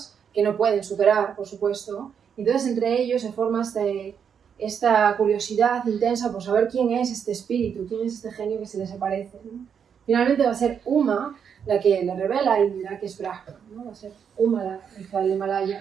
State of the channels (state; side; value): quieter; left; 7.4 dB